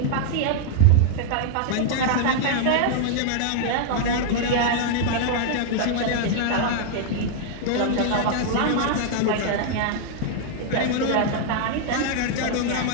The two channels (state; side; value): different; both; correlation -0.01